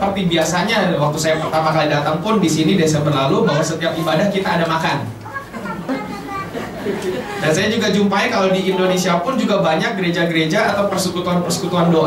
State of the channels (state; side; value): identical; both; correlation 1.00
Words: biasanya waktu saya pertama kali datang pun di sini Desember lalu, bahwa setiap ibadah kita ada makan. Dan saya juga jumpai kalau di Indonesia pun juga banyak gereja-gereja atau persekutuan-persekutuan